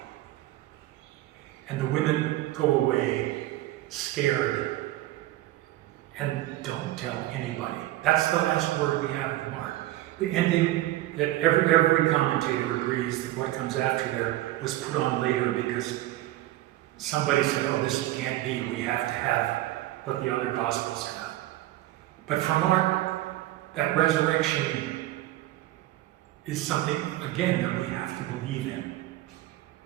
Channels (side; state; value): left; quieter; 15.9 dB